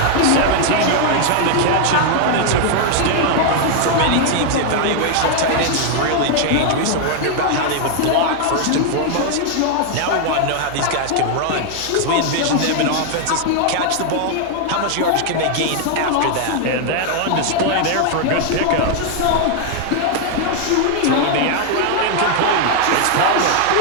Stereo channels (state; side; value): different; both; correlation 0.00